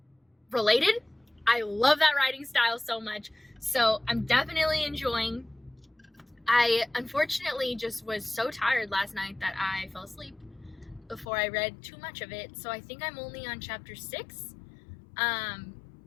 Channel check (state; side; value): drops out; right; at 11.2 s